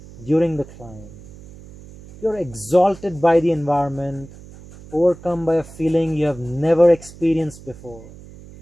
during the climb. You are exalted by the environment, overcome by a feeling you have never experienced before.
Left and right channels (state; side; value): noise; right; hum, 19 dB below the sound